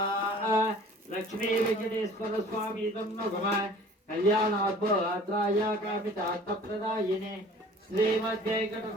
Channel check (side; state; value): both; normal; correlation 0.48